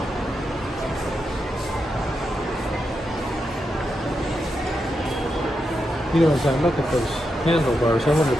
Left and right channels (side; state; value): both; normal; correlation 0.85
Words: You know, as I look at those handlebars, I wonder